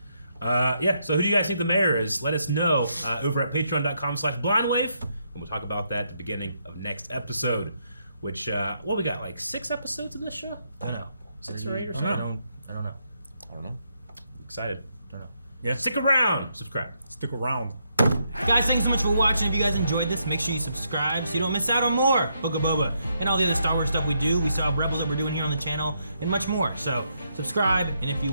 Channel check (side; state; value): both; inverted; correlation -0.77